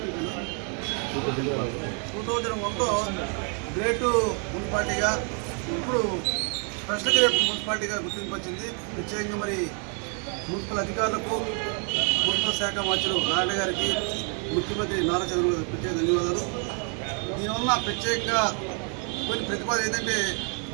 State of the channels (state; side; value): quieter; left; 39.8 dB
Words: గ్రేటు మున్సిపాలిటీగా, ఇప్పుడు స్పెషల్ గ్రేట్ మున్సిపాలిటీగా గుర్తింపు వచ్చింది. ప్రత్యేకంగా మరి మున్సిపల్ అధికారులకు, మున్సిపల్ శాఖ మంత్రులు నారాయణ గారికి, ముఖ్యమంత్రి నారా చంద్రబాబు ప్రత్యేక ధన్యవాదాలు. దీనివల్ల ప్రత్యేకంగా కొన్ని ప్రతిపాదన ఏంటంటే,